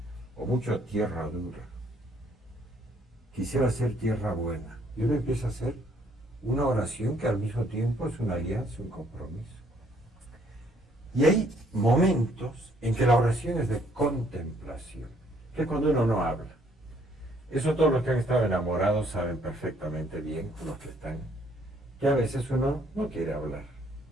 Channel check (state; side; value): normal; both; correlation 0.65